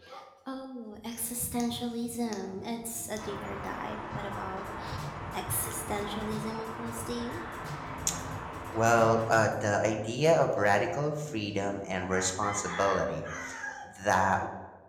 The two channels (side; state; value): both; identical; correlation 1.00